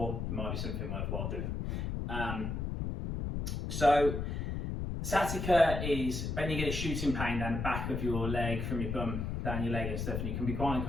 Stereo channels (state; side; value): noise; left; rumble, 3 dB below the sound